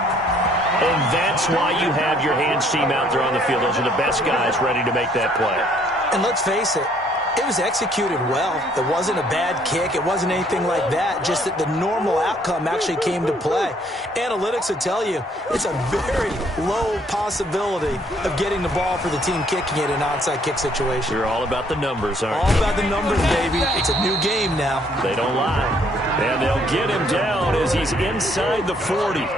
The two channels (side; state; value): both; normal; correlation 0.64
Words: And that's why you have your hands team out there on the field. Those are the best guys ready to make that play. And let's face it, it was executed well. It wasn't a bad kick. It wasn't anything like that. Just that the normal outcome actually came to play. Analytics will tell you it's a very low possibility of getting the ball for the team kicking it in an onside kick situation. You're all about the numbers, aren't you? All about the numbers, baby. It's a new game now. They don't lie. And they'll get him down as he's inside the 40.